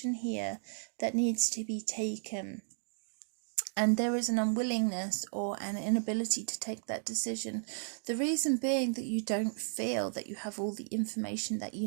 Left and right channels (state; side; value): silent; left; digital silence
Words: here that needs to be taken. And there is an unwillingness or an inability to take that decision. The reason being that you don't feel that you have all the information that